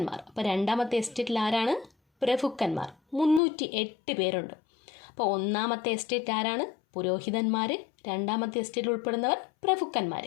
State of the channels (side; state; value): right; drops out; at 3.4 s